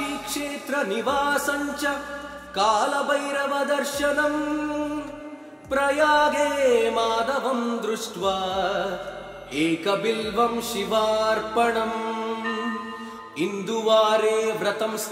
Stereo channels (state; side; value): identical; both; correlation 1.00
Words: च कालभैरवदर्शनम् प्रयागे माधवं दृष्ट्वा एकबिल्वं शिवार्पणम् इन्दुवारे व्रतं